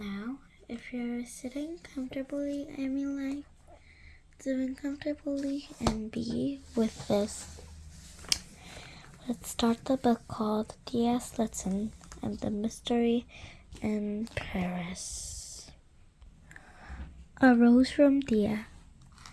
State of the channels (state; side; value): identical; both; correlation 1.00